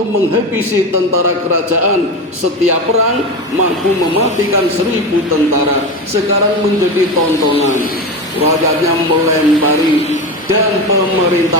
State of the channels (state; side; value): normal; both; correlation 0.22